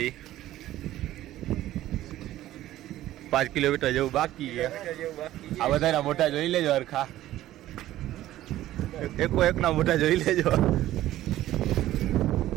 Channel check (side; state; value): left; quieter; 14.3 dB